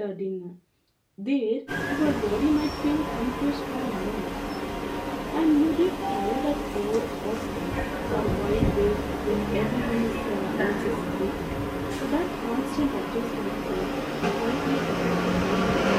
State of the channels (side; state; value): both; identical; correlation 1.00